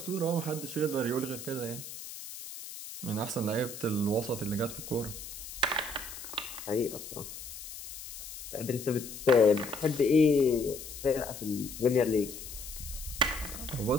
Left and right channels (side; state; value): left; noise; hiss, 11 dB below the sound